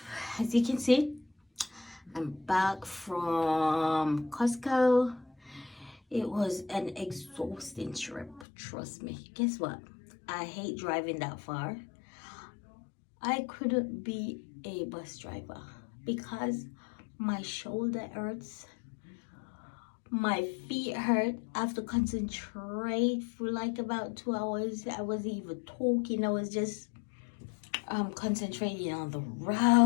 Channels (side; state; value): right; drops out; at 8.5 s